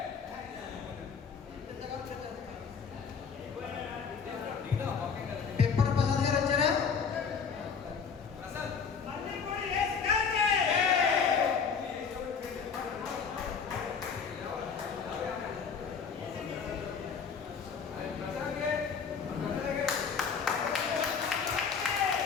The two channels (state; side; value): quieter; right; 6.1 dB